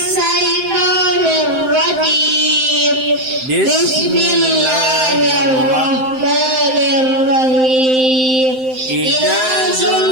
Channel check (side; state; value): left; late; 7.7 ms